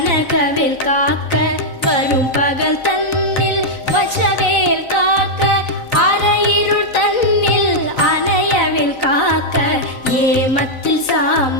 காக்க வரும் பகல் தன்னில் வச்சவேல் காக்க அரையிருள் தன்னில் அணையவேல் காக்க ஏமத்தில்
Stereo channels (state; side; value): late; right; 4.0 ms